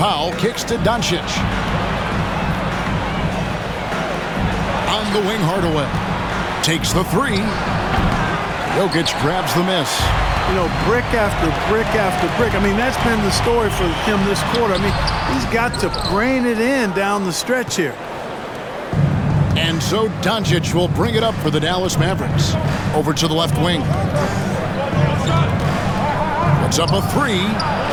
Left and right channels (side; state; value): both; identical; correlation 1.00